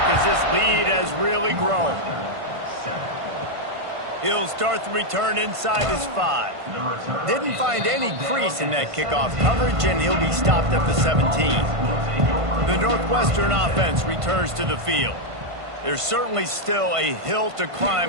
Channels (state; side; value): late; left; 1.5 ms